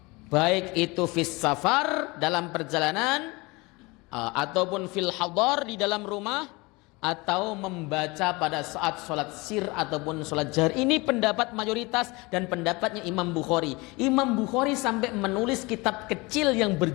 Baik itu fis safar, dalam perjalanan, ataupun fil hadar, di dalam rumah, atau membaca pada saat sholat sir ataupun sholat jahr. Ini pendapat mayoritas dan pendapatnya Imam Bukhari. Imam Bukhari sampai menulis kitab kecil yang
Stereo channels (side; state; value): right; quieter; 24.7 dB